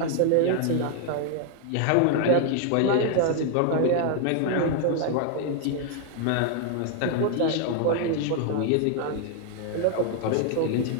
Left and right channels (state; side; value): different; both; correlation 0.00